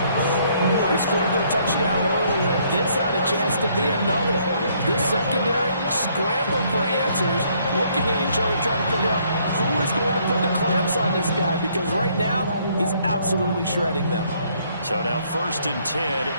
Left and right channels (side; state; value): both; inverted; correlation -0.66